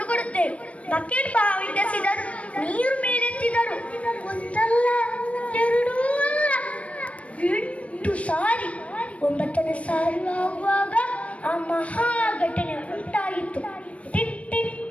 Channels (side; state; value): right; late; 0.064 ms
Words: ಕೊಡುತ್ತೆ. ಬಕೆಟ್ ಬಾವಿಸಿದರು, ನೀರು ಮೇಲೆತ್ತಿದರು. ಒಂದಲ್ಲ 2 ಅಲ್ಲ 8 ಸಾರಿ. 9ನೇ ಸಾರಿ ಆಗುವಾಗ ಆ ಮಹಾ ಘಟನೆ ಉಂಟಾಗಿತ್ತು. ಟಿಟ್ ಟಿಟ್